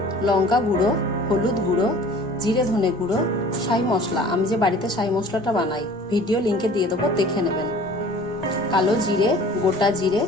লঙ্কা গুঁড়ো, হলুদ গুঁড়ো, জিরে ধনে গুঁড়ো, শাহি মশলা। আমি যে বাড়িতে শাহি মশলাটা বানাই, ভিডিও লিঙ্কে দিয়ে দেবো, দেখে নেবেন। কালো জিরে, গোটা জিরে,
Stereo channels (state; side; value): normal; both; correlation 0.47